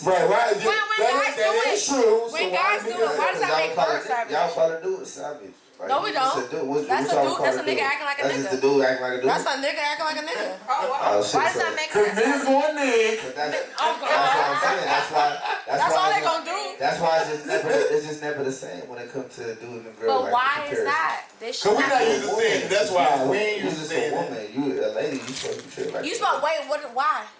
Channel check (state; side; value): identical; both; correlation 1.00